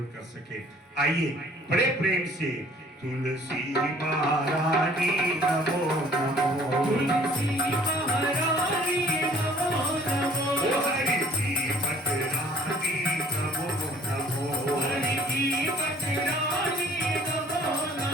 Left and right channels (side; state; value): both; normal; correlation 0.55